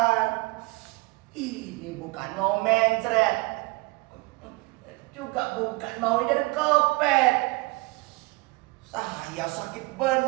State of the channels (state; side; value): quieter; left; 24.7 dB